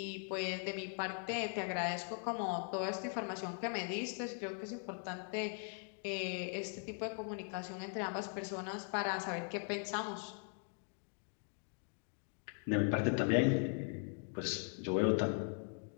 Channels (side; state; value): right; silent; 51 dB below the other